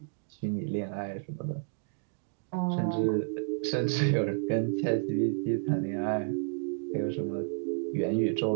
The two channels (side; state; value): left; silent; 57 dB below the other